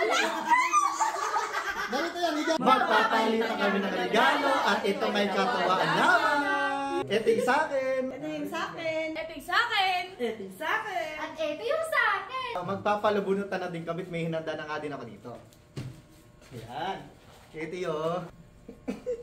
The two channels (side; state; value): both; identical; correlation 1.00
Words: Ganito yan, magpapalitan kami ng regalo at ito may katawaan naman. Ito yung sa akin. Ito yung sa akin. Ito yung sa akin. Ito yung sa akin. At ito yung sa akin. Magpapalabunutan na din kami, may hinanda na nga din ako dito. Ayan. Ito yun.